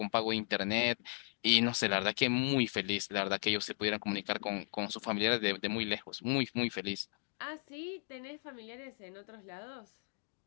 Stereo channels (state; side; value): silent; right; 54 dB below the other